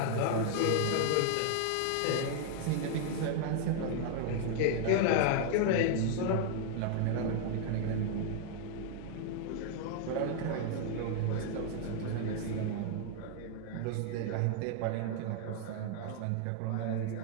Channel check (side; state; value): both; different; correlation 0.00